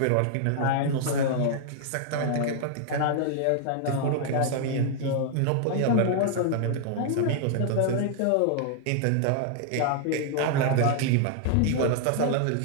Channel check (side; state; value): both; different; correlation 0.00